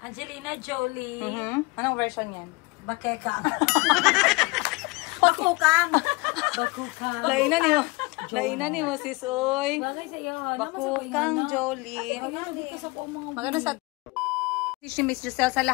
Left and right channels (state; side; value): quieter; right; 25.4 dB